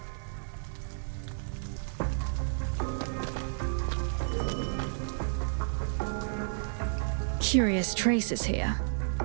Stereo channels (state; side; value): silent; left; digital silence